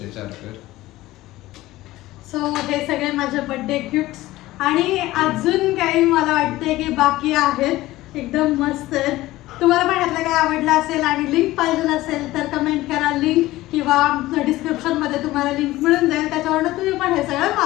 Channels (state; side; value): quieter; right; 17.3 dB